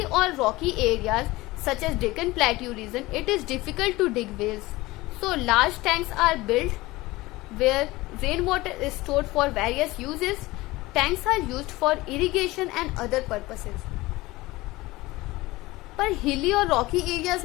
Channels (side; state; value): right; quieter; 19.9 dB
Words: और Rocky areas such as Deccan Plateau region, it is difficult to dig wells. So large tanks are built where rainwater is stored for various uses. Tanks are used for irrigation and other purposes. पर हिली और रॉकी एरियाज